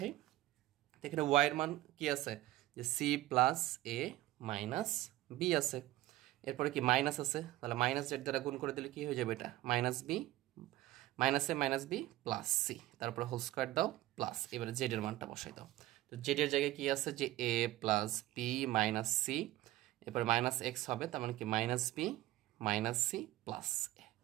এখানে ওয়াই এর মান কি আছে যে C plus A minus B আছে, এরপরে কি মাইনাস আছে, তাহলে মাইনাস জেড দ্বারা গুণ করে দিলে কি হয়ে যাবে এটা মাইনাস বি মাইনাস এ মাইনাস বি প্লাস সি, তারপরে হোল স্কোয়ার দাও প্লাস, এবারে জেড এর মানটা বসাই দাও। তো জেড এর জায়গায় কি আছে যে A plus B minus C, এরপরে মাইনাস এক্স হবে, তার মানে কি minus B minus C plus A,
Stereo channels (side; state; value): left; quieter; 16.2 dB